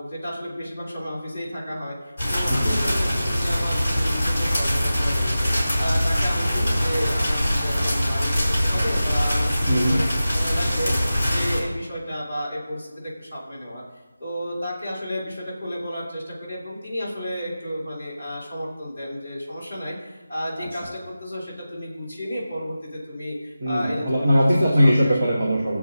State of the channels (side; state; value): both; inverted; correlation -0.94